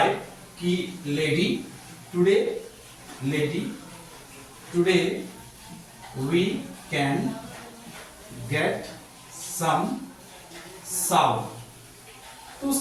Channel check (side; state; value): both; identical; correlation 1.00